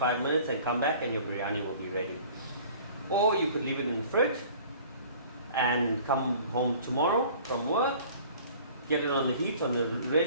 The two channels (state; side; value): inverted; both; correlation -0.48